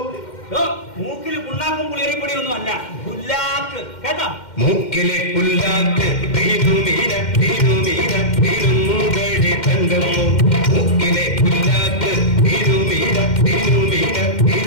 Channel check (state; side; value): late; right; 2.1 ms